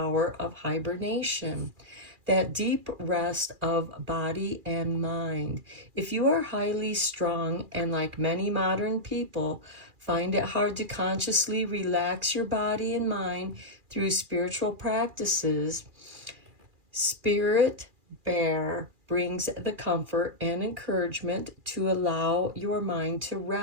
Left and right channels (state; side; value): late; left; 2.4 ms